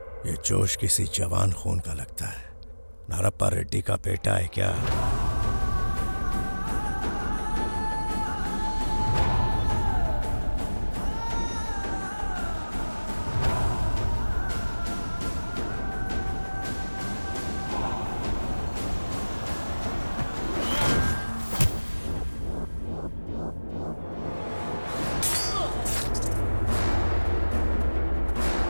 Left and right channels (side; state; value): both; inverted; correlation -1.00